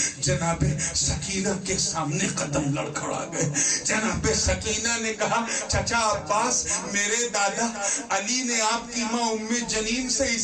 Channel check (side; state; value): both; identical; correlation 1.00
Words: جناب سکینہ کے سامنے قدم لڑکھڑا گئے۔ جناب سکینہ نے کہا چچا عباس، میرے دادا علی نے آپ کی ماں ام جنین سے